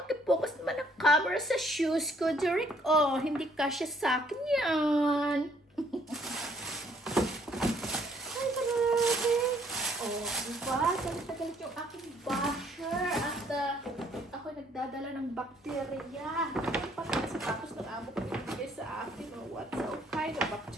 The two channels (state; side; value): normal; both; correlation 0.65